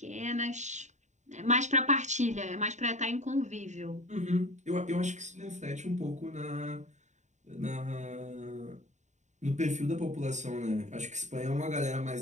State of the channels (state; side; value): late; left; 0.34 ms